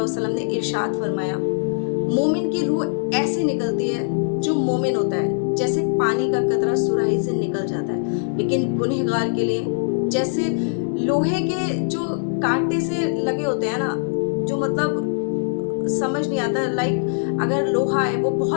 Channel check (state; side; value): silent; right; digital silence